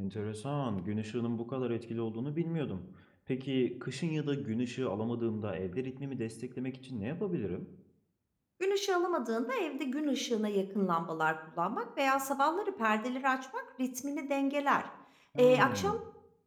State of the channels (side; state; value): both; identical; correlation 1.00